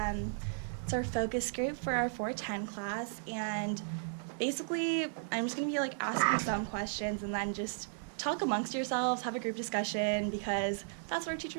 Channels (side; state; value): left; silent; digital silence